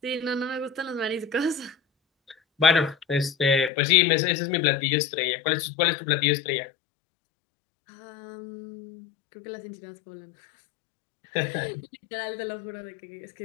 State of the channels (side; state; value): right; drops out; at 3.7 s